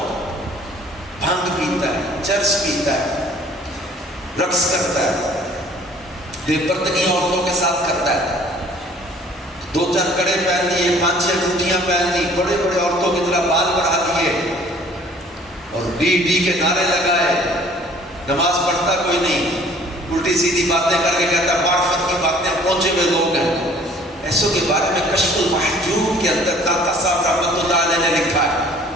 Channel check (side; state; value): both; normal; correlation 0.54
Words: بھنگ پیتا ہے, چرس پیتا ہے, رقص کرتا ہے, بے پردگی عورتوں کے ساتھ کرتا ہے, 2-4 کڑے پہن لیے, 5-6 ٹوٹیاں پہن لی, بڑے بڑے عورتوں کی طرح بال بڑھا دیے اور ڈی کے نعرے لگائے. نماز پڑھتا کوئی نہیں, الٹی سیدھی باتیں کر کے کہتا ہے معرفت کی باتیں, پہنچے ہوئے لوگ ہیں. ایسوں کے بارے میں کشف المحجوب کے اندر داتا صاحب رحمۃ اللہ علیہ نے لکھا ہے.